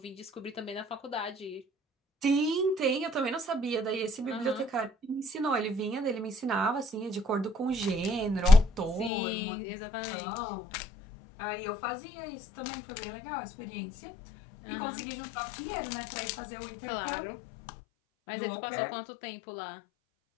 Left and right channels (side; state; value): right; drops out; at 9.1 s